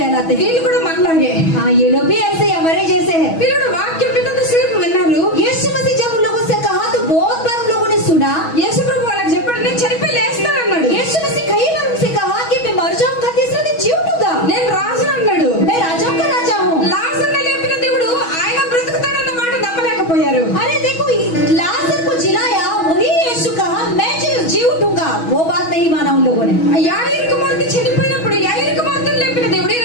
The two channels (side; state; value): right; late; 6.2 ms